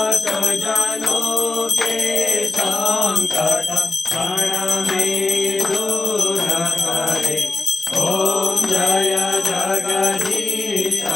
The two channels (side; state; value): right; quieter; 3.4 dB